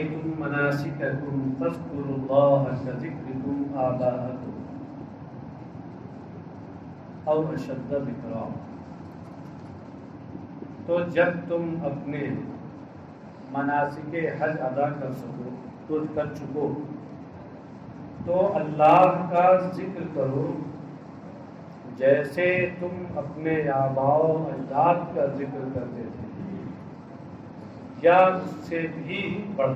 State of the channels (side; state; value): both; identical; correlation 1.00